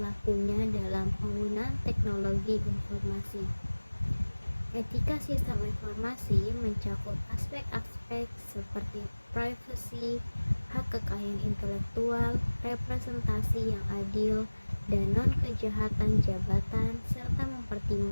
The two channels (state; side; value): inverted; both; correlation -1.00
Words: dalam penggunaan teknologi informasi. Etika sistem informasi mencakup aspek-aspek seperti privacy, hak kekayaan intelektual, representasi yang adil, dan non-kejahatan jabatan, serta